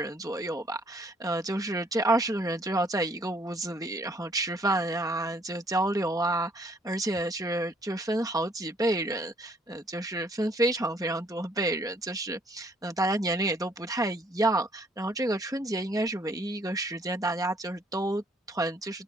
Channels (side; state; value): both; normal; correlation 0.63